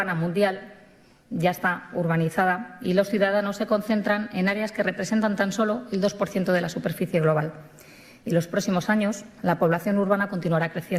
mundial ya está urbanizada y los ciudadanos se concentran en áreas que representan tan solo el 2% de la superficie global. Y en los próximos años la población urbana continuará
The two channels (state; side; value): identical; both; correlation 1.00